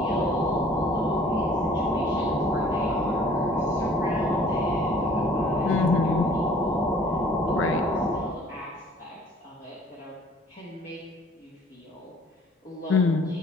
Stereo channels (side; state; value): both; normal; correlation 0.53